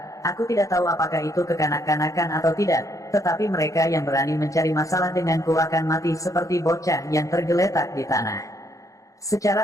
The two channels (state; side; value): late; right; 0.16 ms